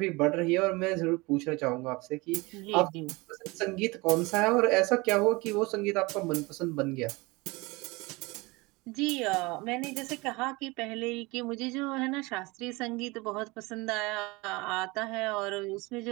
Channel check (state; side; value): quieter; left; 24.2 dB